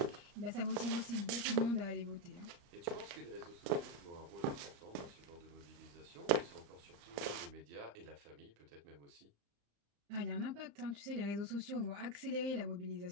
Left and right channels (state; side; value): late; left; 35 ms